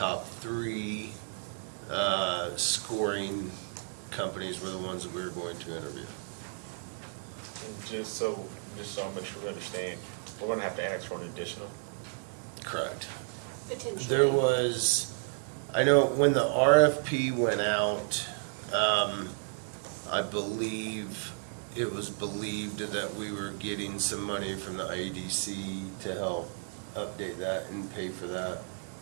three scoring companies were the ones that we were going to interview. And just so I make sure we understand, we're gonna have to ask for an additional. Correct. Potentially. There was, I know when the RFP went out, I believe it was believed that we were getting some money from the IEDC to help update that and pay for that.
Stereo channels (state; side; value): silent; left; 56 dB below the other